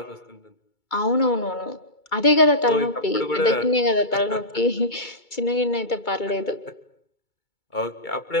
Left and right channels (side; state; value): right; late; 2.2 ms